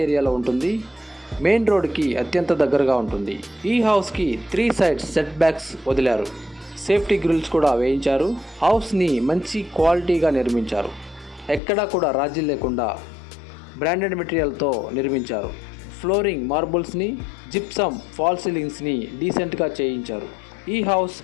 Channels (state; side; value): drops out; right; at 11.6 s